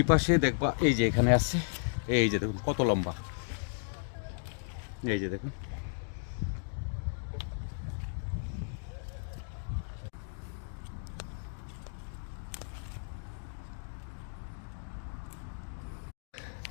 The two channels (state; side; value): silent; right; digital silence